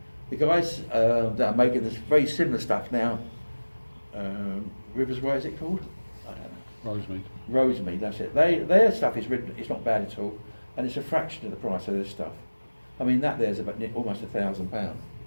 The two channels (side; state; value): both; inverted; correlation -1.00